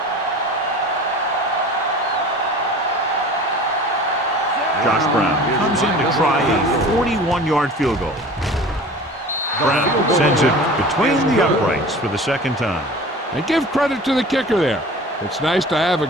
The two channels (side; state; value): both; normal; correlation 0.40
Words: Josh Brown comes in to try a 41-yard field goal. Brown sends it between the uprights for the 2nd time. And give credit to the kicker there. It's nice to have a